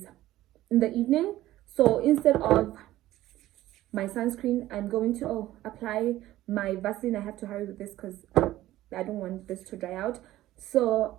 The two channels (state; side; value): quieter; left; 15.1 dB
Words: in the evening, so instead of my sunscreen, I'm going to apply my Vaseline. I have to hurry with this because I don't want this to dry out.